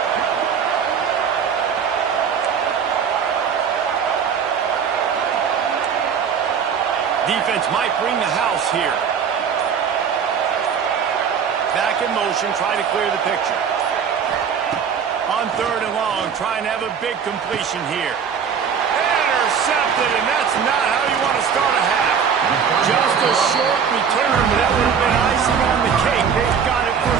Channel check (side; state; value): left; quieter; 7.0 dB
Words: Defense might bring the house here. Back in motion, try to clear the picture. On 3rd and long, trying to have a big completion here. Intercepted, and that's not how you want to start a half. Just a short return, but that would have been icing on the cake. They've got it